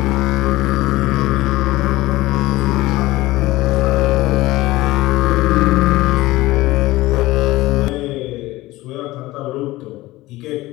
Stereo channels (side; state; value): right; quieter; 18.5 dB